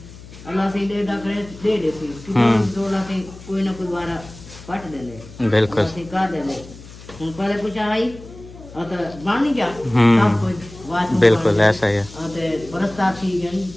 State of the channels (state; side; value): noise; left; hum, 17 dB below the sound